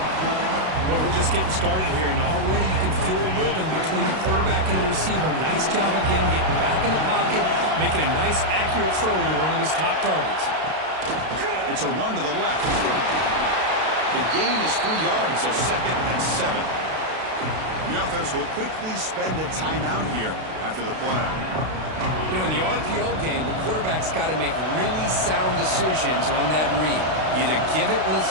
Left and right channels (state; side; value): late; left; 32 ms